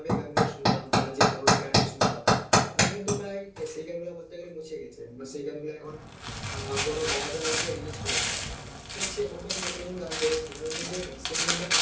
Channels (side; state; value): both; identical; correlation 1.00